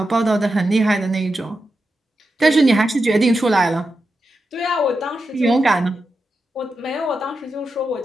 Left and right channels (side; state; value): both; normal; correlation 0.88